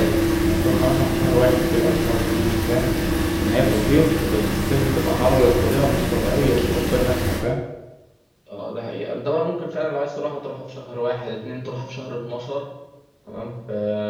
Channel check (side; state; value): both; identical; correlation 1.00